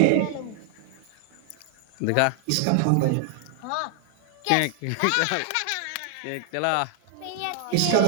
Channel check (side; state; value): both; different; correlation 0.00